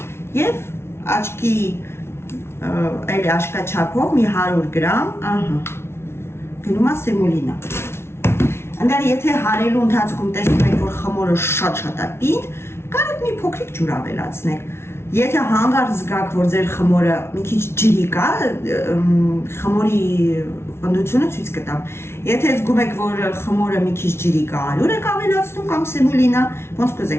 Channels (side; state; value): right; late; 0.12 ms